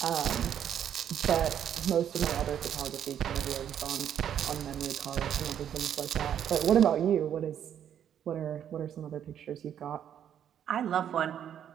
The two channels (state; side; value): quieter; left; 9.5 dB